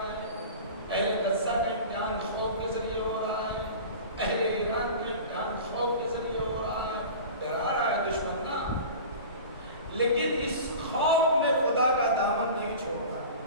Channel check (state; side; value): inverted; both; correlation -0.36